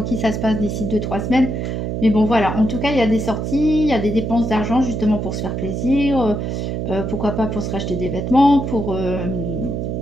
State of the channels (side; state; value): right; noise; hum, 2 dB below the sound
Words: qui ça se passe d'ici 2-3 semaines. Mais bon voilà, en tout cas il y a des sorties, il y a des dépenses d'argent justement pour se faire plaisir, pourquoi pas pour se racheter des vêtements, pour